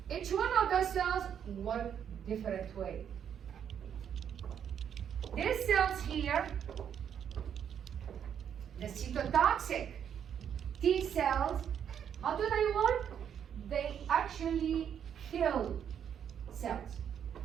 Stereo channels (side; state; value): left; quieter; 8.6 dB